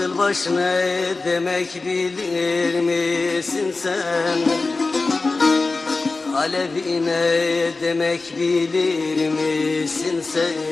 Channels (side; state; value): right; quieter; 3.6 dB